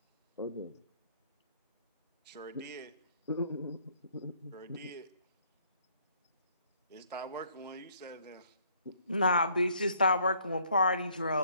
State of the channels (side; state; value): both; inverted; correlation -0.64